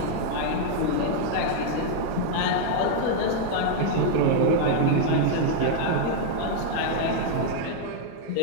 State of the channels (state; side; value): different; both; correlation -0.01